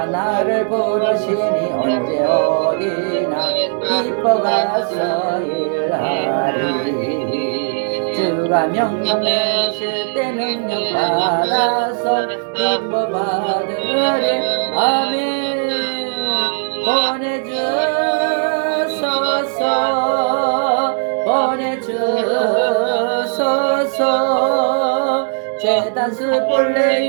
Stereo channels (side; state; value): left; silent; digital silence